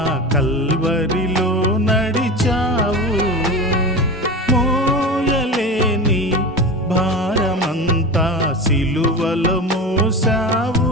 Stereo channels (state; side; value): normal; both; correlation 0.27